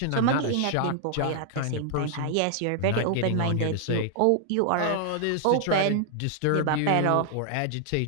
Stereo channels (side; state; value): both; different; correlation 0.00